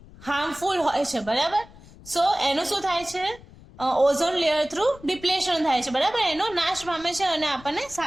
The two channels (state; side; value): noise; left; rumble, 21 dB below the sound